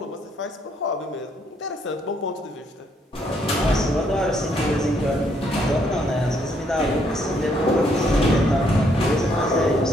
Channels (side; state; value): both; normal; correlation 0.71